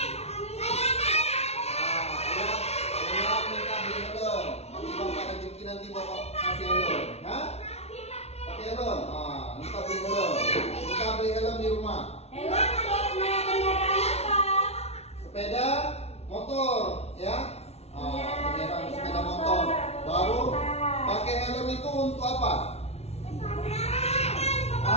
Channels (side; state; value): right; late; 0.31 ms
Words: beli helm. Nanti bapak rezeki nanti bapak kasih helm. Hah? Pakai helm. Minta beli helm. Minta beli helm di rumah. Sepeda motor ya. Sepeda motor. Baru pakai helm itu untuk apa?